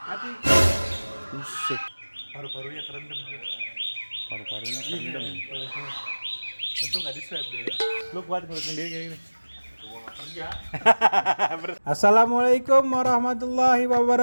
Mati. musik, Paru-parunya kerendam tuh. paru-parunya kerendam. Untung nggak di swab dia. Lu kuat ngurus sendiri kayak gini. Gua nggak kerja. Assalamualaikum warahmatullahi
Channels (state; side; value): inverted; both; correlation -1.00